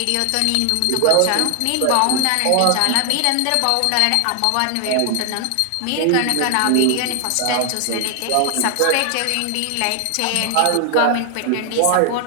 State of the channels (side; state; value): both; different; correlation 0.00